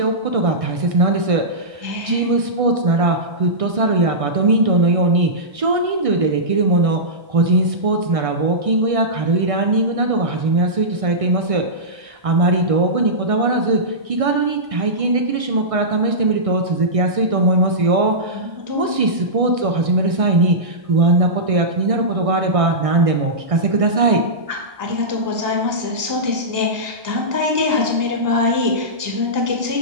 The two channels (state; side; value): late; left; 1.6 ms